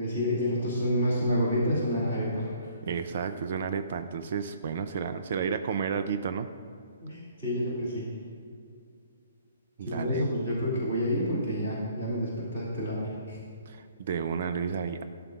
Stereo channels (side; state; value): both; inverted; correlation -0.58